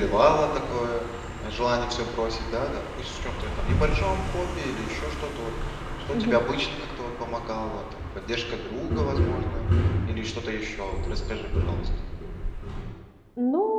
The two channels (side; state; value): both; identical; correlation 1.00